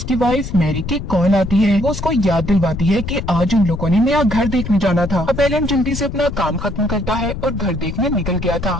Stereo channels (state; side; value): noise; left; rumble, 7 dB below the sound